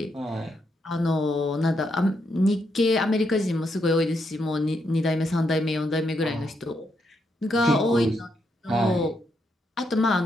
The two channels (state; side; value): normal; both; correlation 0.79